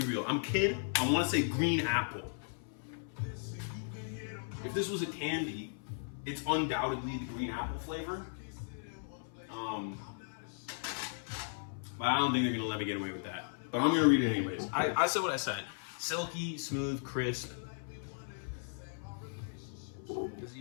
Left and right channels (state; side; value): silent; right; 54 dB below the other